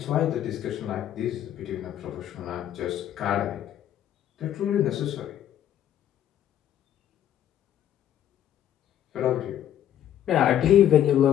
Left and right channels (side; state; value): right; quieter; 10.9 dB